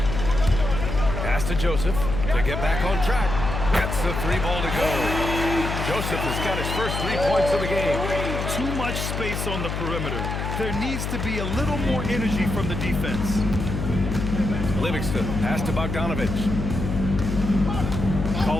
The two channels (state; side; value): noise; left; hum, 3 dB below the sound